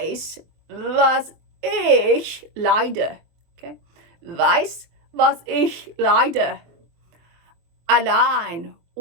was ich leide, okay? Weiß, was ich leide. Allein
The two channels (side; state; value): left; late; 23 ms